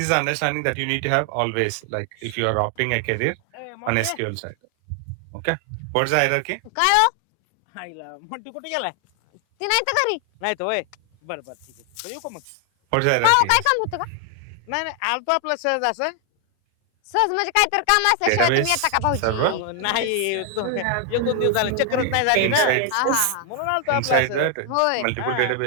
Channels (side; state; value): both; different; correlation 0.00